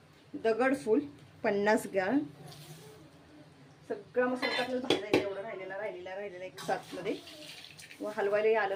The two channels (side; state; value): both; identical; correlation 1.00